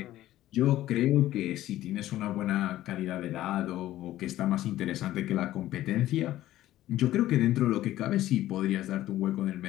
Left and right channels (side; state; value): right; quieter; 14.4 dB